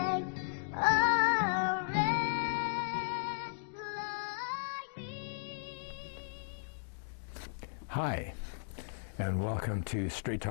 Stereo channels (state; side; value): silent; right; digital silence